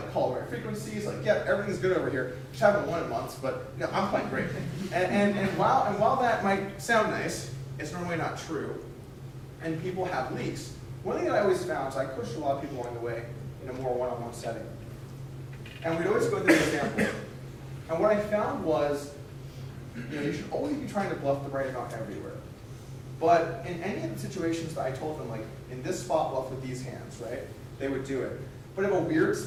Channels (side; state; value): both; identical; correlation 1.00